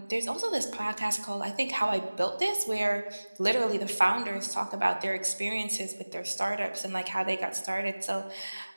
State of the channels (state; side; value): inverted; both; correlation -1.00